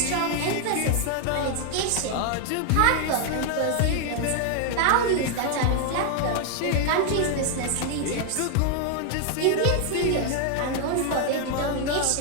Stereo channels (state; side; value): different; both; correlation 0.00